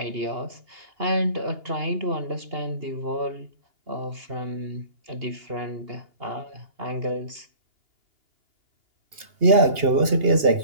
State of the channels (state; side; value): late; left; 2.8 ms